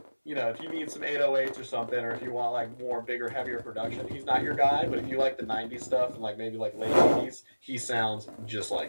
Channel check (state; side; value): inverted; both; correlation -1.00